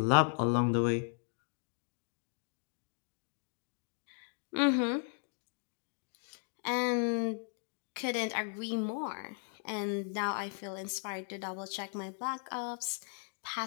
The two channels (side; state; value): right; silent; 53 dB below the other